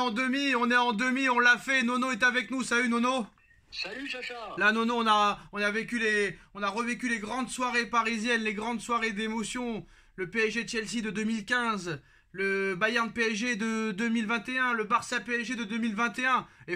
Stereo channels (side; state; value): both; identical; correlation 1.00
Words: demi, on l'a fait, Nono est avec nous, salut Nono. Salut Sacha. Là Nono, on a revécu les grandes soirées parisiennes, les grandes soirées d'émotion, le PSG Chelsea de 2015, le Bayern PSG de 2021, le Barça PSG de 2021. Et